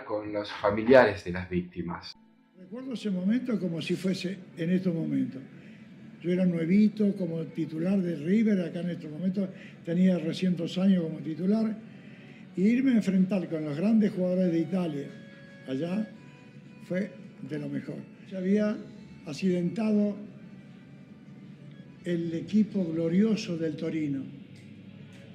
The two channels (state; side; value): identical; both; correlation 1.00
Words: con los familiares de las víctimas. Recuerdo ese momento como si fuese en estos momentos. Yo era nuevito como titular de River, acá en estos momentos tenía recién 2 años como titular, y irme a enfrentar con los grandes jugadores de Italia allá fue de lo mejor. Se había accidentado el equipo glorioso del Torino,